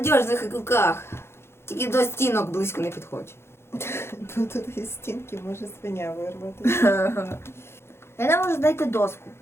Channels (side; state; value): right; late; 0.12 ms